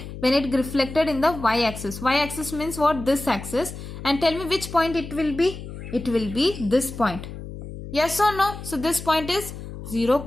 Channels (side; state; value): left; noise; hum, 11 dB below the sound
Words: when it reflected in the y-axis. Y-axis means what? This axis. And tell me which point it will be. It will be this point. Yes or no? So this point is 0,